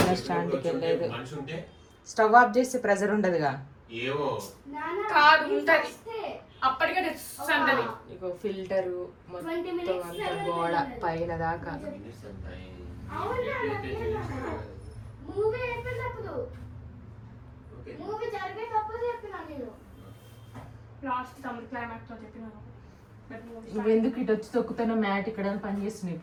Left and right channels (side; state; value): both; identical; correlation 1.00